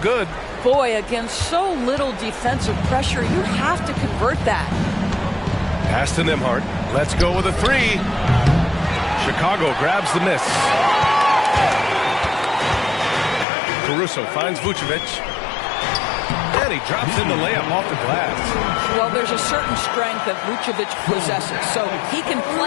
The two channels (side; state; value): right; drops out; at 13.5 s